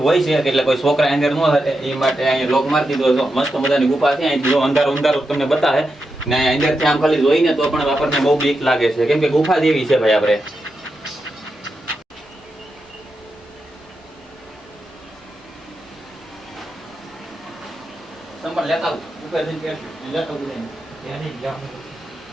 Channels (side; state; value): both; normal; correlation 0.87